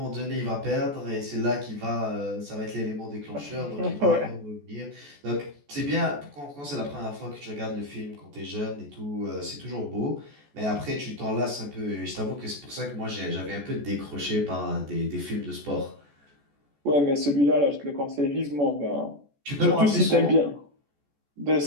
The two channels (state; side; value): late; left; 14 ms